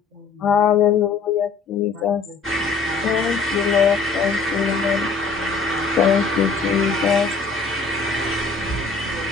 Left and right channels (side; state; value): right; quieter; 4.6 dB